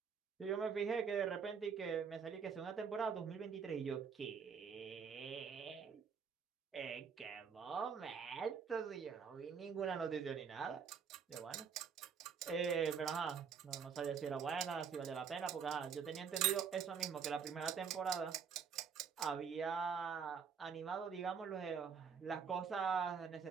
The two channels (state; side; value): quieter; left; 6.6 dB